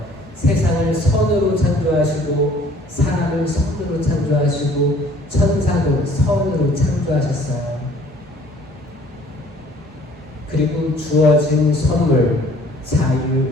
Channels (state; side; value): normal; both; correlation 0.55